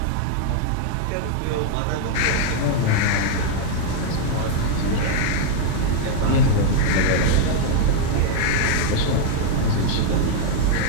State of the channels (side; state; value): both; different; correlation 0.00